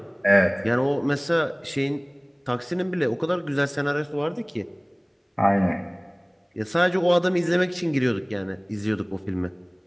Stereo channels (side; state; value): both; identical; correlation 1.00